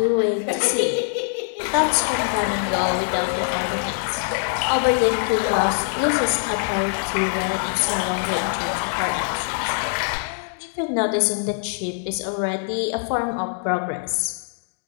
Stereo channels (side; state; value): right; silent; digital silence